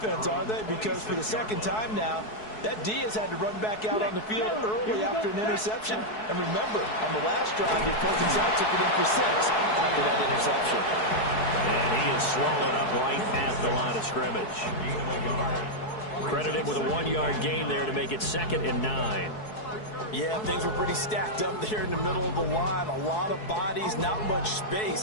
are they? Because for the 2nd time now, that Diaz had to run back out on the field early after an interception. And remember, on the last drive, the opposing side took it in for 6 after that interception. And he is swallowed up right at the line of scrimmage. Credit him with a 1-yard gain there to make it 2nd and 9. Yeah, things were pretty stacked up there in the middle of the line. A lot of bodies, not much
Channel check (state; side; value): late; right; 4.7 ms